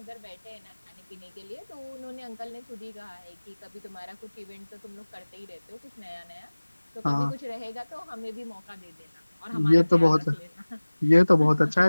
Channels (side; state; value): both; inverted; correlation -1.00